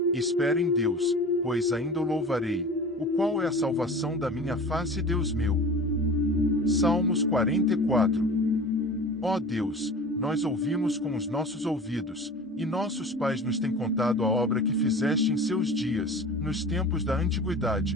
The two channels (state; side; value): normal; both; correlation 0.38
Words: Espera em Deus, pois ainda o louvarei, o qual é a salvação da minha face, Deus meu. Salmos 44. Ó Deus, nós ouvimos com os nossos ouvidos, e nossos pais nos têm contado a obra que fizeste em seus dias, nos tempos da